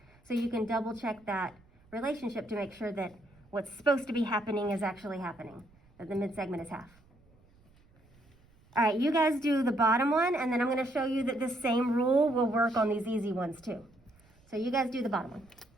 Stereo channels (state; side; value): noise; right; rumble, 30 dB below the sound